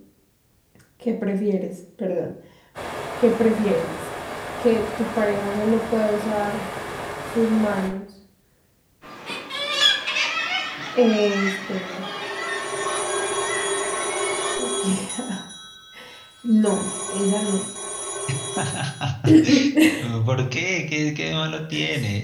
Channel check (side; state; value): both; identical; correlation 1.00